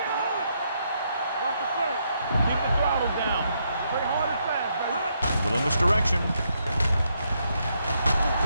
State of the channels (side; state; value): both; inverted; correlation -0.77